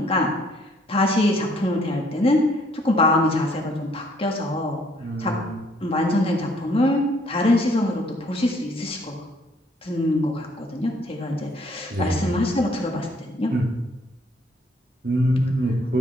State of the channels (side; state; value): both; normal; correlation 0.64